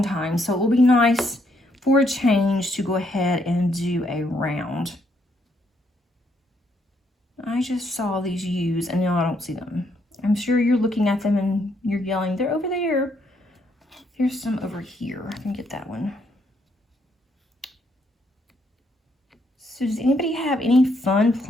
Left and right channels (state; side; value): normal; both; correlation 0.73